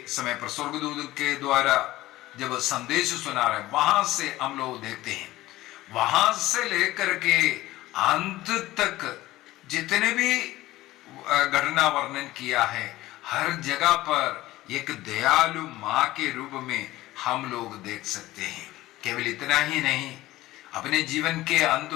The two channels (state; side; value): quieter; right; 16.9 dB